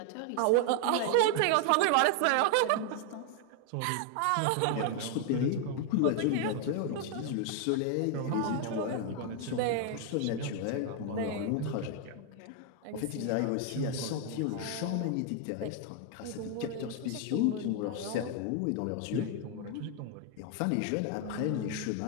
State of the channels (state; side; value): different; both; correlation 0.00